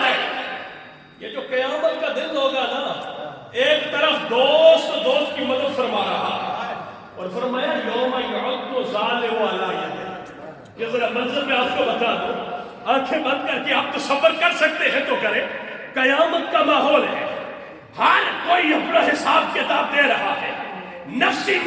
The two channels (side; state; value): both; identical; correlation 1.00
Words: یہ جو قیامت کا دن ہوگا نا، ایک طرف دوست کی مدد فرما رہا اور فرمایا یوم یعض الظالم علی یدیہ۔ یہ ذرا منظر میں آپ کو بتا دوں، آنکھیں بند کر کے آپ تصور کر سکتے ہیں تو کریں، قیامت کا ماحول ہے، ہر کوئی اپنا حساب کتاب دے رہا ہے، نفسی